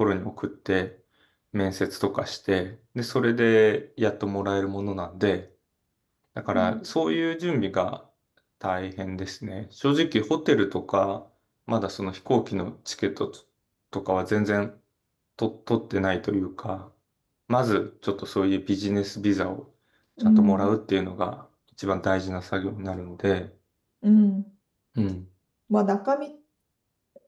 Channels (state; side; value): identical; both; correlation 1.00